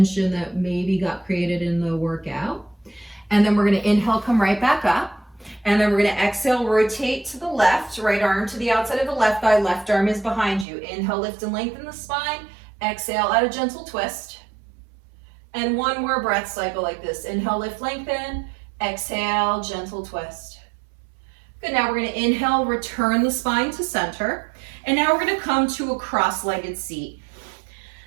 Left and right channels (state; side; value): drops out; left; at 10.7 s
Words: that maybe got created in the workout. And then we're gonna inhale, come right back up. And then we're gonna exhale, rotate to the left, right arm to the outside of the left thigh, left arm is behind you. Inhale, lift and lengthen the spine. Exhale, add a gentle twist. And 1 more breath cycle like this. Inhale, lift, lengthen. Exhale, gentle twist. Good, now we're gonna inhale, return the spine to center. And now we're gonna come to a cross-legged seat.